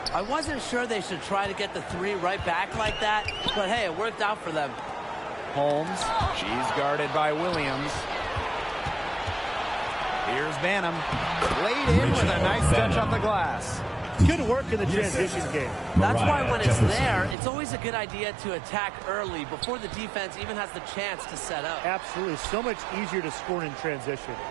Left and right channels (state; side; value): drops out; left; at 17.4 s